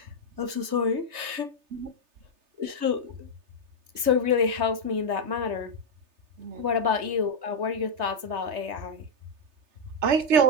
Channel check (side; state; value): left; late; 3.2 ms